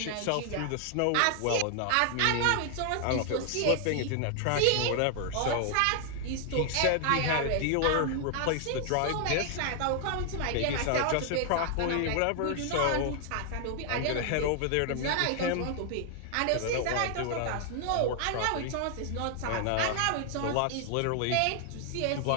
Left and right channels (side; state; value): both; different; correlation 0.00